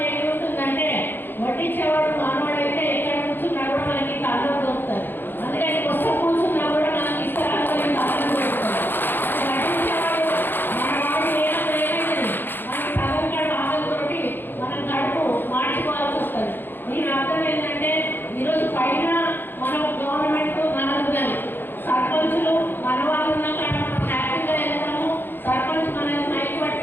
ఏముంటుందంటే వడ్డించేవాడు మానవాడైతే ఎక్కడ కూర్చున్నా కూడా మనకి కళ్ళు దొరుకుతుంది. అందుకని కొత్త కూర్చున్నా కూడా మనకి ఇస్తారాలు కళ్ళు దొరుకుతుంది. వడ్డించేవాడు మన వాడు ఏమైంది మనకి సగం ఆకలితోటి మనం కడుపు మార్చుకోవాల్సి వస్తుంది. దీని అర్థం ఏంటంటే ఈరోజు పైన మన గవర్నమెంట్ మనకు కానీ సర్పంచులు మన వాళ్ళు ఉన్నా కానీ మనం హ్యాపీగా వెళ్తాము. సర్పంచ్ మనల్ని మైక్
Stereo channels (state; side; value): late; right; 0.097 ms